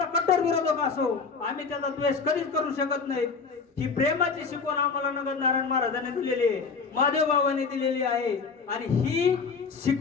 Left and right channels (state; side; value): quieter; right; 5.0 dB